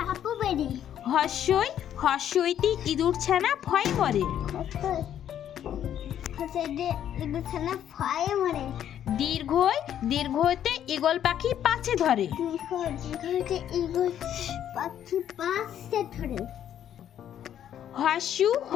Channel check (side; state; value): right; quieter; 10.3 dB